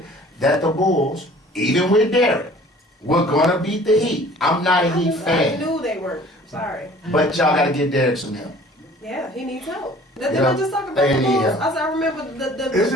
that the Bulls, even with Derek, were gonna beat the Heat. I'm not a Heat I fan. knew they weren't. Sorry. But y'all gotta get Derek some help. Yeah, he needs help. Didn't Yeah. I just talk about They the need Bulls? help. I remember Is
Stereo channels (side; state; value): both; normal; correlation 0.50